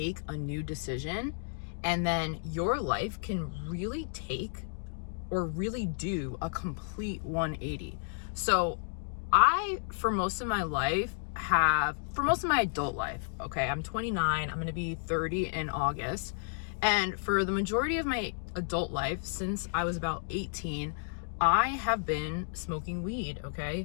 a new decision, and then your life can really take or really do a complete 180. So for most of my adult life, okay, I'm 29, I'm going to be 30 in August. And for the majority of my adult life, since I was about 18, I have been smoking weed,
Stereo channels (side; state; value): right; silent; digital silence